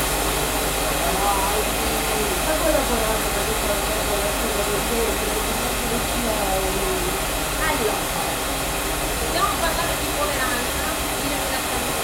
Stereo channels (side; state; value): both; identical; correlation 1.00